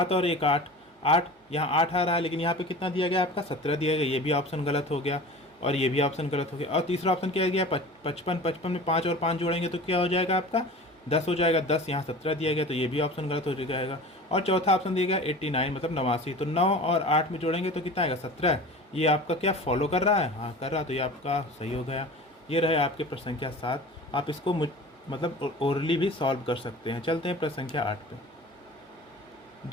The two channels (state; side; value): normal; both; correlation 0.38